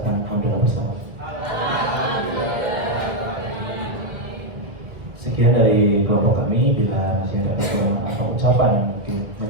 alhamdulillah bersama. Sekian dari kelompok kami. Bila masih ada kekurangan atau ucapan yang mungkin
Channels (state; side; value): late; left; 1.7 ms